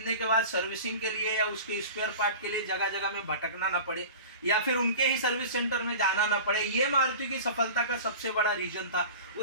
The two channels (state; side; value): inverted; both; correlation -0.36